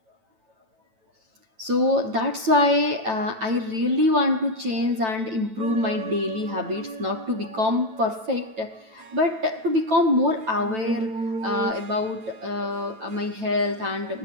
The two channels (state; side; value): late; left; 9.1 ms